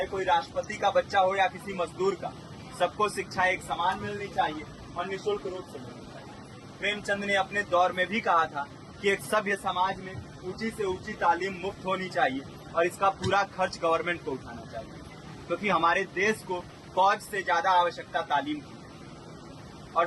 कोई राष्ट्रपति का बच्चा हो या किसी मजदूर का, सबको शिक्षा एक समान मिलनी चाहिए और निःशुल्क रूप से मिलनी चाहिए। प्रेमचंद ने अपने दौर में भी कहा था कि एक सभ्य समाज में ऊंची से ऊंची तालीम मुफ्त होनी चाहिए और इसका पूरा खर्च गवर्नमेंट को उठाना चाहिए, क्योंकि हमारे देश को फौज से ज्यादा आवश्यकता तालीम की है। और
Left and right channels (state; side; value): identical; both; correlation 1.00